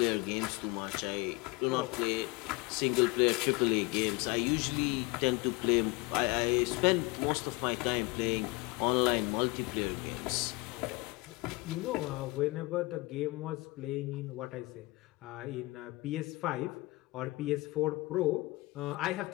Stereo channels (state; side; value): quieter; right; 23.2 dB